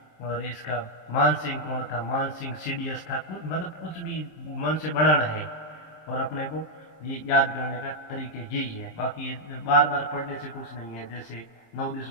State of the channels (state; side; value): late; right; 26 ms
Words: और इसका मान सिंह कौन था, मान सिंह CDS था, कुछ मतलब कुछ भी मन से बनाना है और अपने को ये याद करने का तरीके यही है, बाकी बार बार पढ़ने से कुछ नहीं है। जैसे 9